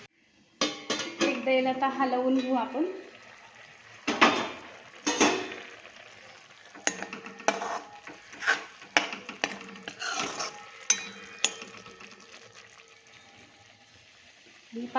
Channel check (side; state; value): both; identical; correlation 1.00